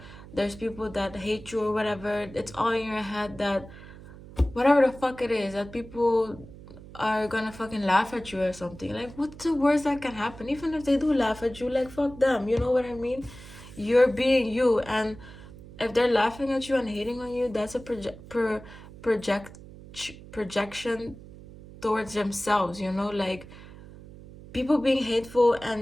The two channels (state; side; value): noise; right; hum, 17 dB below the sound